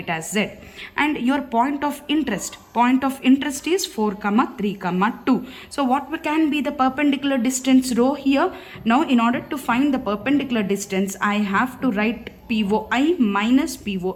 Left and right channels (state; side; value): identical; both; correlation 1.00